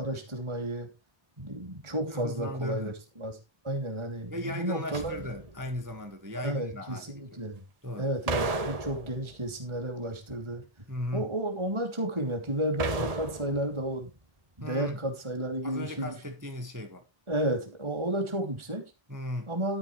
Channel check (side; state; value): left; late; 1.4 ms